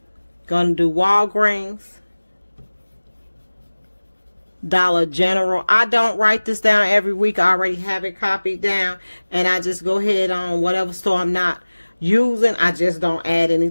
Going to do Walgreens, Dollar General. I don't write this down every week. I already have it copied down. And I just go ahead on whatever store I'm not using. I just don't add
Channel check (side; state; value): both; inverted; correlation -1.00